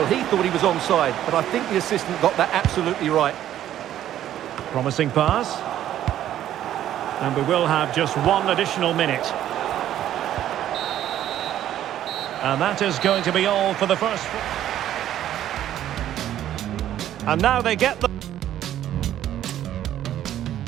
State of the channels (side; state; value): left; quieter; 11.8 dB